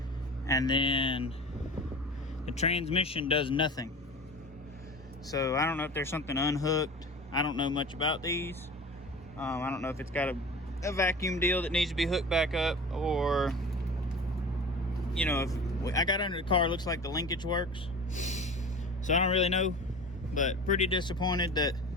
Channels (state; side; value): normal; both; correlation 0.36